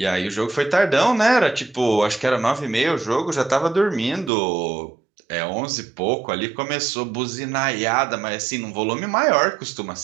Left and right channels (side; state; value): left; drops out; at 4.3 s